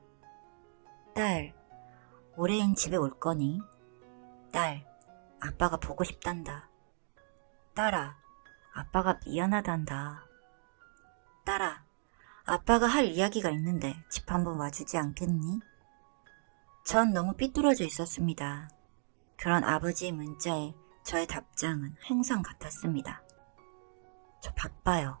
딸, 올해엔 집에 올 거니? 딸, 아빠가 보고 싶단다. 딸아, 아빠가 미안하단다. 딸아, 아빠가 할 이야기가 있는데 집 한번 와주지 않겠니? 전 너무 삐뚤어져 있었습니다. 그런 아버지의 문자에 저의 답장은 항상 같았습니다. 저 바빠요.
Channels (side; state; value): left; silent; digital silence